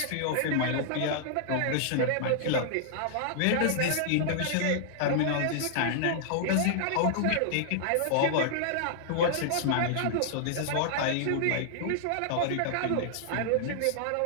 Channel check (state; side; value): different; both; correlation -0.01